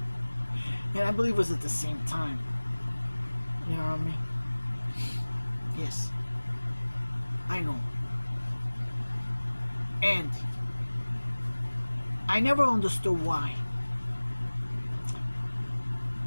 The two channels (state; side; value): inverted; both; correlation -1.00